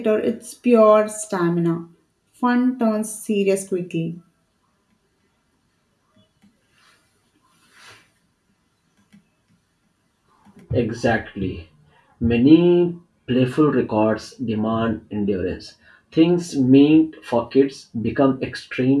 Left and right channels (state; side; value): identical; both; correlation 1.00